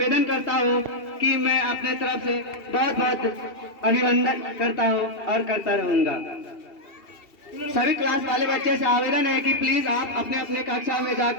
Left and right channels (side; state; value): right; late; 2.7 ms